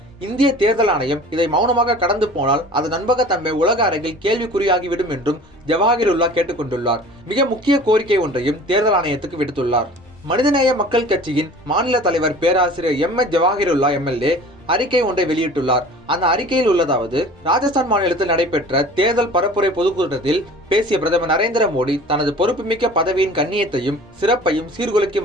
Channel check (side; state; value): both; normal; correlation 0.44